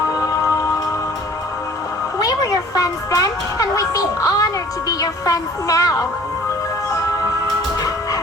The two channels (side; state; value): both; normal; correlation 0.51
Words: We were your friends then, and we'd be honored to be your friends now.